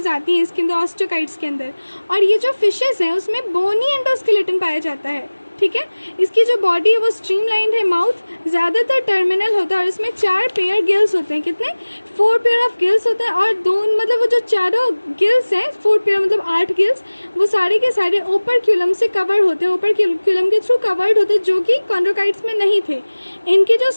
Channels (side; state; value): both; inverted; correlation -1.00